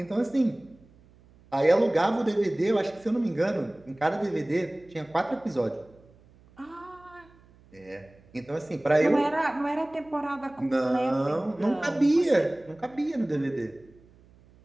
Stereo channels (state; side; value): noise; right; hum, 28 dB below the sound